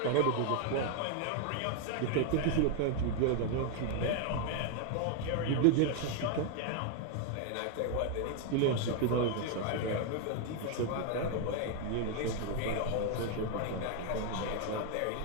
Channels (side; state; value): both; different; correlation 0.01